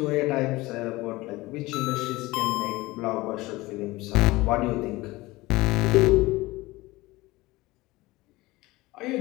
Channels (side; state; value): right; quieter; 20.3 dB